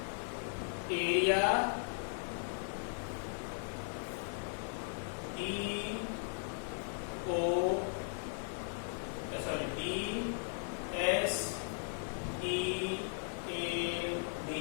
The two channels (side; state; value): right; silent; digital silence